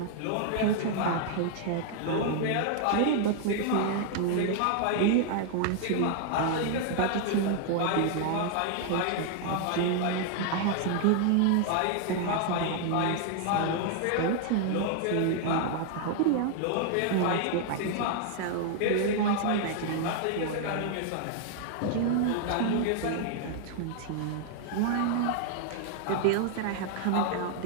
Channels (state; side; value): different; both; correlation 0.00